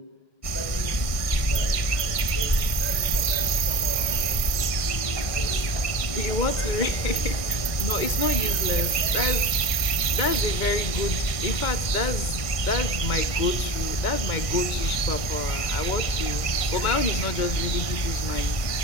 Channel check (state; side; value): late; right; 1.6 ms